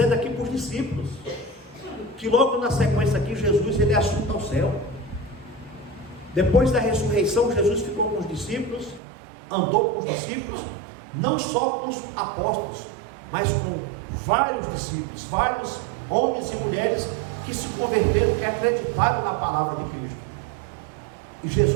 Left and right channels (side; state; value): left; drops out; at 9.0 s